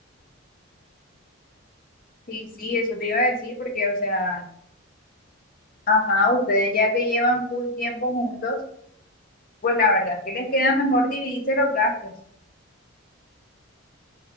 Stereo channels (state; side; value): normal; both; correlation 0.00